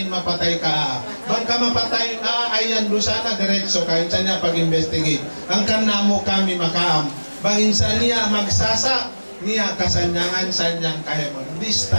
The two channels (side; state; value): both; inverted; correlation -1.00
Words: mapatay ka. Bang ka mapatay, ayan dusana, diretso ka. Insa niya pag-investigate. Ang kanamo kami makaam. Bang insa niya magsasa, niya kasanyangan sanyang kahemon. This